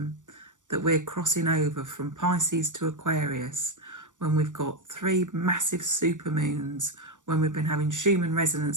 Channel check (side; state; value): left; late; 0.86 ms